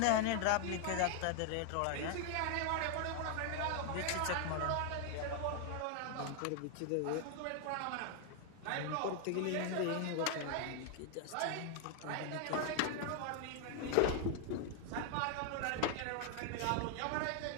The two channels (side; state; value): both; different; correlation 0.00